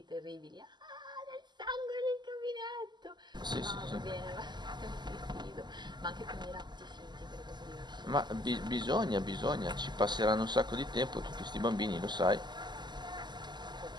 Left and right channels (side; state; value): left; late; 0.21 ms